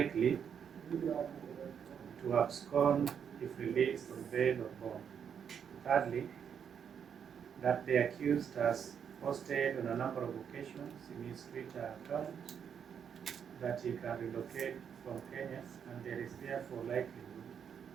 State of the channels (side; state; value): left; quieter; 7.7 dB